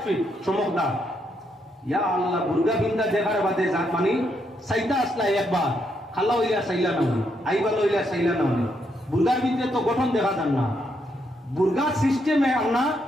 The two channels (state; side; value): normal; both; correlation 0.77